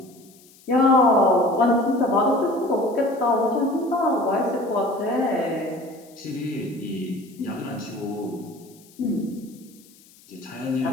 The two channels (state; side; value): noise; left; hiss, 26 dB below the sound